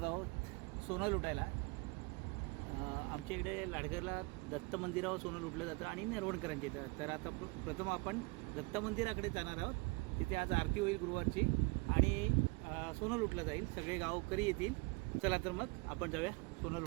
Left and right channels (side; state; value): left; quieter; 27.5 dB